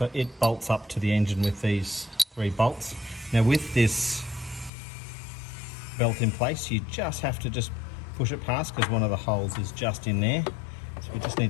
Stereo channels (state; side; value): drops out; right; at 4.7 s